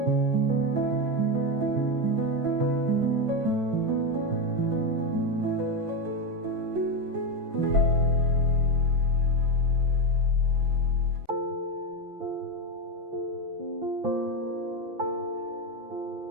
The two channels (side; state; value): left; late; 5.9 ms